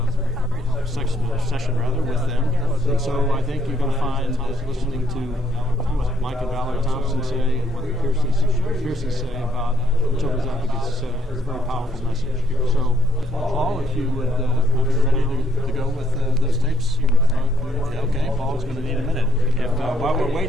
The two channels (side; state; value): both; normal; correlation 0.70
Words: them. And so I think you're going to find, listening to what Mike and Valerie Thompson say and what the Pierces say about Children's Advocacy Center, it's a very powerful message. So, Paul, if you would, are ready to go with those tapes? Okay, Paul's going to need a minute. While we're